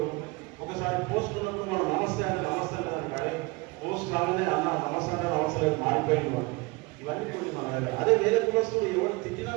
ఒకసారి పోస్ట్ ఉన్నప్పుడు మనం నమస్తే అంటే నమస్తే దానికి అదే పోస్ట్ రాగానే అన్న నమస్తే అంటే నమస్తే మారిపోయింది. ఇవన్నీ మన అదే వేరే కులస్తులు ఎవరు తిట్టినా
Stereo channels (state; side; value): quieter; left; 25.4 dB